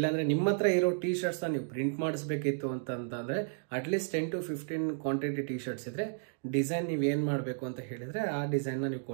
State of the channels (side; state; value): left; silent; digital silence